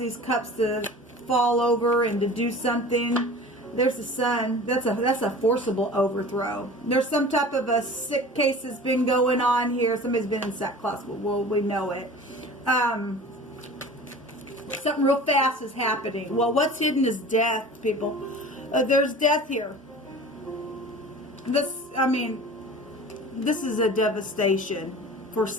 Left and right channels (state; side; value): normal; both; correlation 0.40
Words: cups to fall over and to do something. There's the sun. That's a forcible overthrow. There's some type of a sick case that's been going on here. Somebody's been in sackcloth. Well, we know it. Something real fast is happening. Well, what's hidden is death, people. There's death here. This is a devastation for